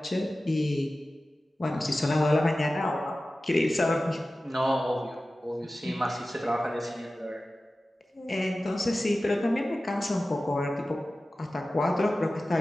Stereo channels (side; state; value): both; normal; correlation 0.96